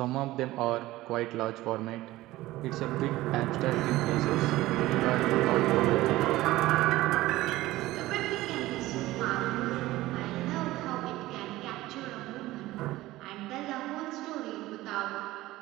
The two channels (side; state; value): left; quieter; 17.3 dB